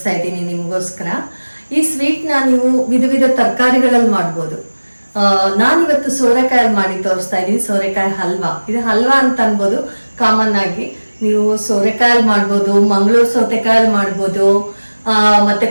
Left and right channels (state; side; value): inverted; both; correlation -1.00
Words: ಇದ್ದೀನಿ ನಿಮಗೋಸ್ಕರ. ಈ ಸ್ವೀಟ್ನ ನೀವು ವಿಧ ವಿಧ ತರಕಾರಿಗಳಲ್ಲಿ ಮಾಡ್ಬೋದು. ನಾನಿವತ್ತು ಸೋರೆಕಾಯಲ್ಲಿ ಮಾಡಿ ತೋರಿಸ್ತಾ ಇದ್ದೀನಿ, ಸೋರೆಕಾಯಿ ಹಲ್ವಾ. ಇದು ಹಲ್ವಾ ಅಂತ ಅನ್ಬೋದು. ಕಾಮನ್ ಆಗಿ ನೀವು ಸೋರೆಕಾಯಲ್ಲಿ ಮಾಡ್ಬೋದು, ಮಂಗಳೂರು ಸೌತೆಕಾಯಲ್ಲಿ ಮಾಡ್ಬೋದು, ಮತ್ತೆ